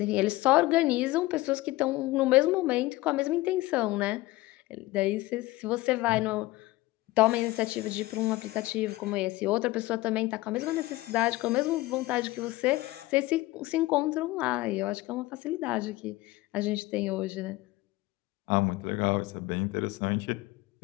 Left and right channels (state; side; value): quieter; right; 19.2 dB